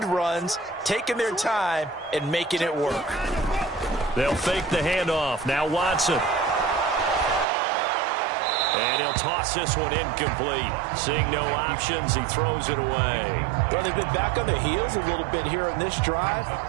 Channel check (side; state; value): left; drops out; at 7.5 s